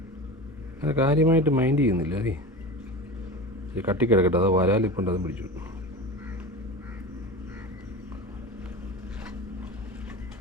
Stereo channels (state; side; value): normal; both; correlation 0.30